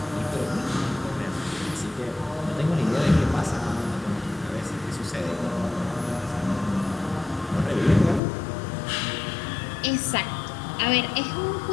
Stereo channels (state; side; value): drops out; right; at 8.2 s